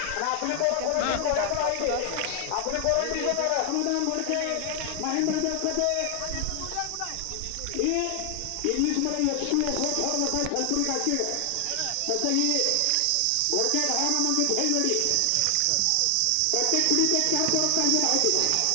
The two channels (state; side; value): different; both; correlation 0.00